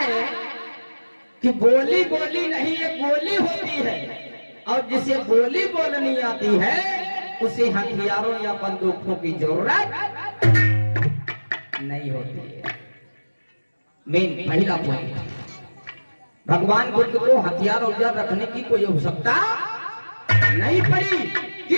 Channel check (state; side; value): inverted; both; correlation -1.00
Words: कि बोली बोली नहीं ये गोली होती है और जिसे बोली बोलनी आती है उसे हथियारों या बंदूकों की जरूरत नहीं होती है। मेन पहला पॉइंट, भगवान बुद्ध को हथियार औजार रखने की कोई आवश्यकता नहीं पड़ी।